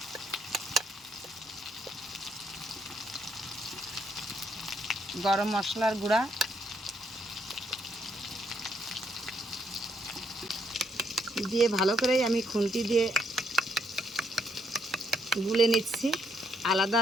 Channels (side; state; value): both; normal; correlation 0.73